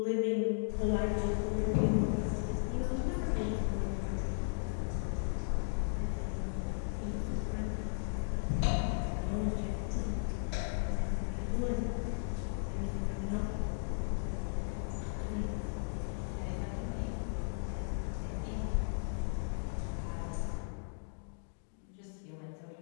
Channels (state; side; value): silent; right; digital silence